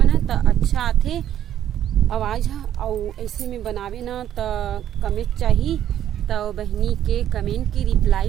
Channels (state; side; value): quieter; left; 11.0 dB